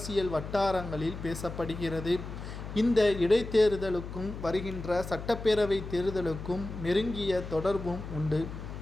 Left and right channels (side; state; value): left; noise; hum, 9 dB below the sound